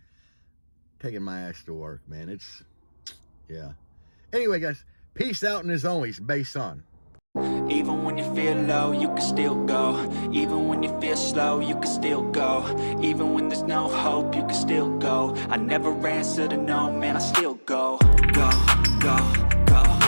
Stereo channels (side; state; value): both; inverted; correlation -1.00